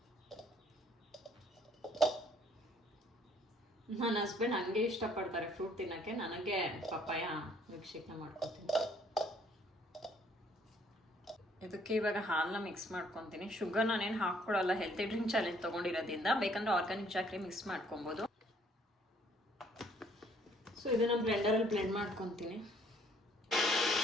ನನ್ನ ಹಸ್ಬೆಂಡ್ ಹಂಗೆ ಇಷ್ಟಪಡ್ತಾರೆ ಫ್ರೂಟ್ ತಿನ್ನೋಕ್ಕೆ. ನನಗೆ ಪಪ್ಪಾಯ ಮಿಲ್ಕ್ ಶೇಕ್ನ ಮಾಡ್ಕೊತೀನಿ. ಇದಕ್ಕೆ ಇವಾಗ ಹಾಲನ್ನ ಮಿಕ್ಸ್ ಮಾಡ್ಕೊತೀನಿ. ಶುಗರ್ ನಾನೇನು ಹಾಕ್ಕೊಡಲ್ಲ, ಹೆಲ್ತಿ ಡ್ರಿಂಕ್ ಚಾಲೆಂಜ್ ತೊಗೊಂಡಿರೋದ್ರಿಂದ. ಬೇಕಂದ್ರೆ ಆರ್ಗ್ಯಾನಿಕ್ ಚಾಕ್ರಿ ಮಿಕ್ಸ್ ಮಾಡ್ಕೊಬೋದು. ಸೊ ಇದನ್ನ ಬ್ಲೆಂಡರಲ್ಲಿ ಬ್ಲೆಂಡ್ ಮಾಡ್ಕೊತೀನಿ.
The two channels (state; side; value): normal; both; correlation 0.62